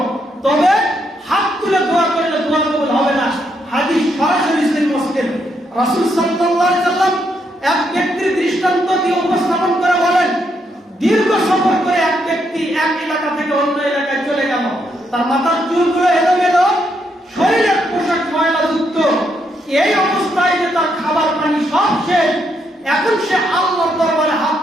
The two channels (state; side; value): normal; both; correlation 0.77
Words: তবে হাত তুলে দোয়া করলে দোয়া কবুল হবে না। হাদিস সরাসরি সহিহ মুসলিম। রাসূল সাল্লাল্লাহু আলাইহি ওয়াসাল্লাম এক ব্যক্তির দৃষ্টান্ত দিয়ে উপস্থাপন করে বলেন, দীর্ঘ সফর করে এক ব্যক্তি এক এলাকা থেকে অন্য এলাকায় চলে গেল। তার মাথার চুলগুলো এলোমেলো, শরীরের পোশাক ময়লাযুক্ত, এই অবস্থায় যে তার খাবার পানি সব শেষ। এখন সে আল্লাহর দরবারে হাত